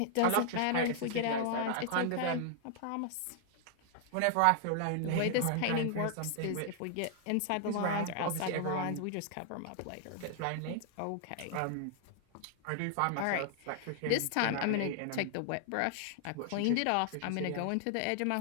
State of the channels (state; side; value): different; both; correlation 0.00